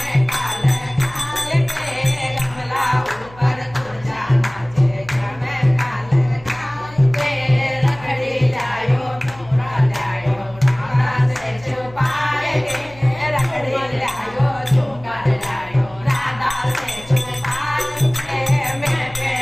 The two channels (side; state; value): left; noise; hum, 22 dB below the sound